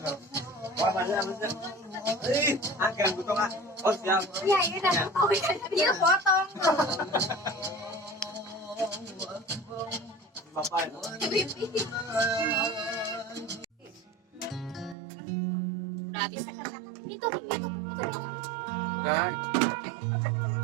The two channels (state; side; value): drops out; left; at 15.0 s